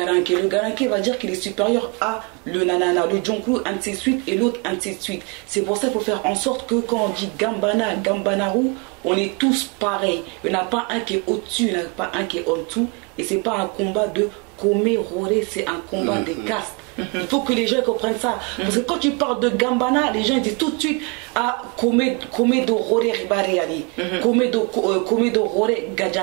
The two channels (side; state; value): left; quieter; 32.1 dB